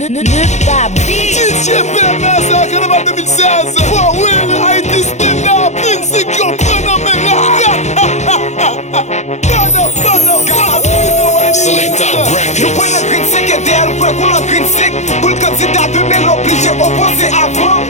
DJ PMS à Carnaval 2016. For real, Haïti stand up. Insecure, Selecta Records. Je prends le green sick et derrière le pour le green sick. Pour le candidat de Bel obligé opposé avant.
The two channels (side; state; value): right; late; 0.33 ms